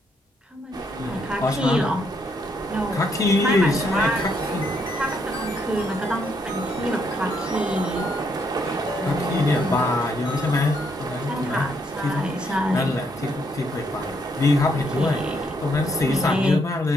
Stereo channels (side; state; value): both; normal; correlation 0.74